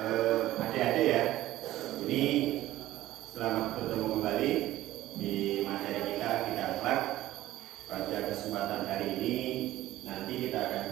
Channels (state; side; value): quieter; left; 15.2 dB